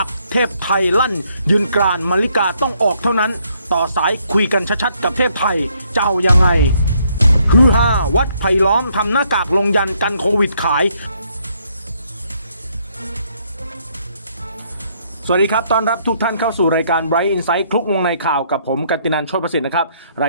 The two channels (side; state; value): both; inverted; correlation -0.70